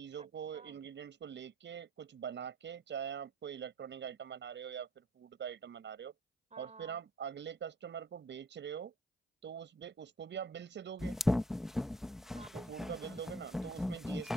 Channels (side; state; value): both; normal; correlation 0.58